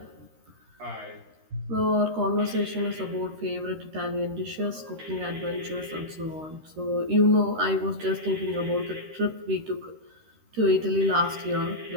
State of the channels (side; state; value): left; late; 13 ms